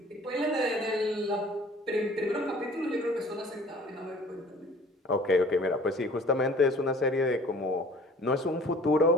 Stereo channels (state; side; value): normal; both; correlation 0.50